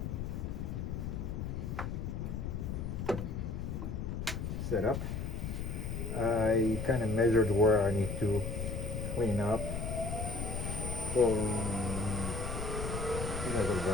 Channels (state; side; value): noise; left; rumble, 3 dB below the sound